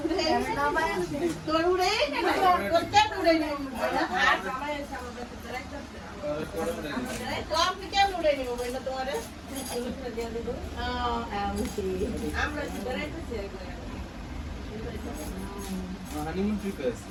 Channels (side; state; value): both; identical; correlation 1.00